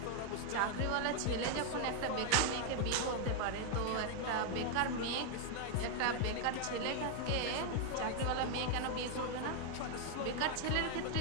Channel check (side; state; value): both; different; correlation 0.00